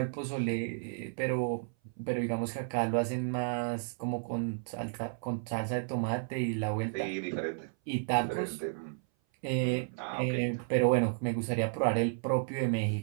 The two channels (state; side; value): silent; left; 56 dB below the other